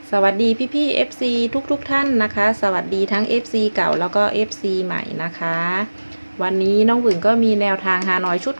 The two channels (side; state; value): both; inverted; correlation -1.00